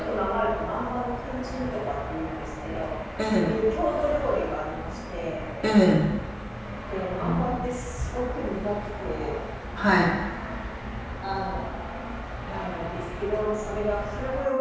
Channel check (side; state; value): both; identical; correlation 1.00